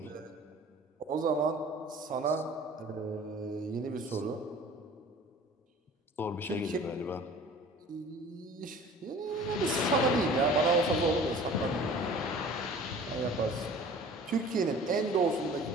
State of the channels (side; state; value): both; normal; correlation 0.45